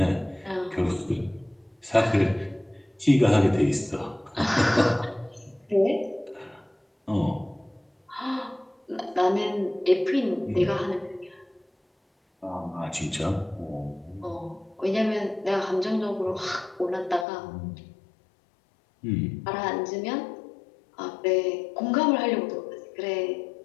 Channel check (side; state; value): right; drops out; at 17.2 s